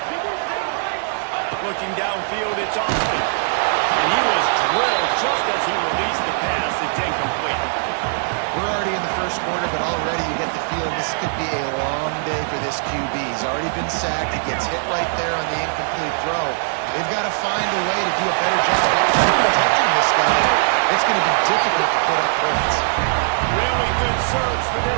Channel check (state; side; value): silent; left; digital silence